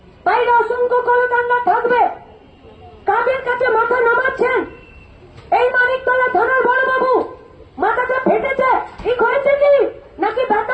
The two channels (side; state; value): both; identical; correlation 1.00